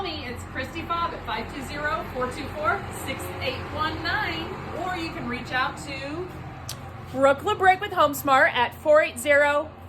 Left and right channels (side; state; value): both; identical; correlation 1.00